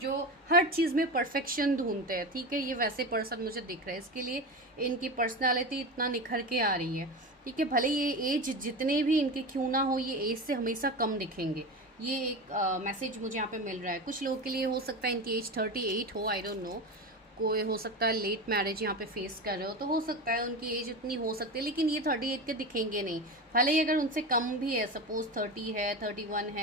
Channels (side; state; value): both; normal; correlation 0.24